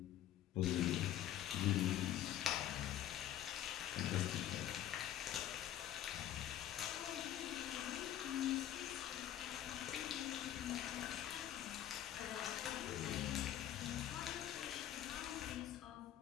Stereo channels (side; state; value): right; quieter; 11.8 dB